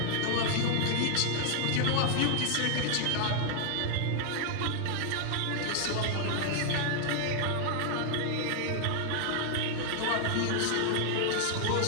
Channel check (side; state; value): both; different; correlation 0.00